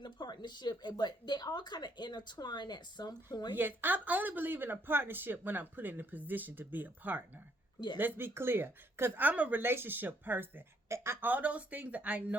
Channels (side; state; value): both; normal; correlation 0.70